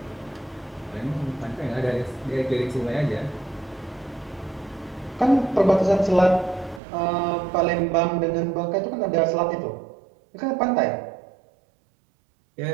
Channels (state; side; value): drops out; left; at 6.8 s